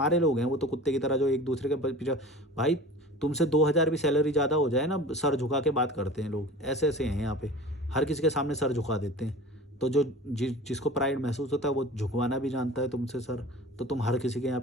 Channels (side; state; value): both; normal; correlation 0.39